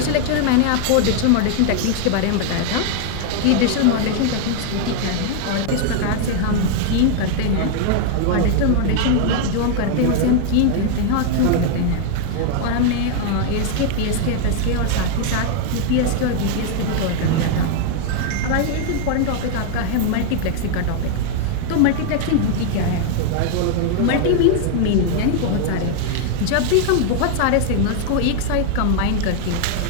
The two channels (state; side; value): different; both; correlation 0.00